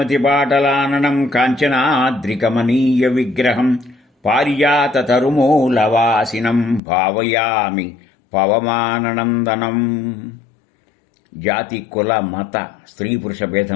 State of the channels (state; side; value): drops out; right; at 6.8 s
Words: కాంచనాద్రికమనీయ విగ్రహం పారిజాతతరుమూలవాసినం భావయామి పవమాననందనం. జాతి కుల మత స్త్రీ పురుష